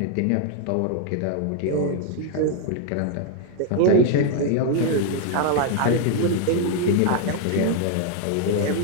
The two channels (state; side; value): different; both; correlation 0.00